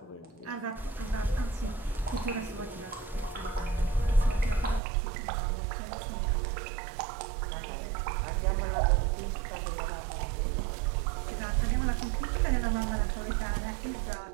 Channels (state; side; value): drops out; left; at 4.8 s